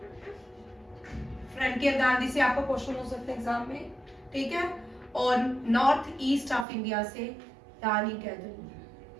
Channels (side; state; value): left; drops out; at 6.7 s